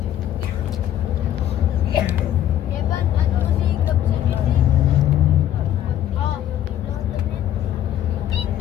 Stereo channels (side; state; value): right; quieter; 11.6 dB